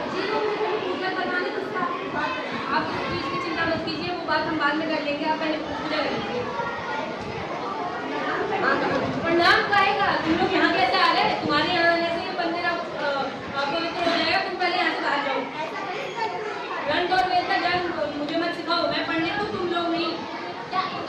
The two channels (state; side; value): identical; both; correlation 1.00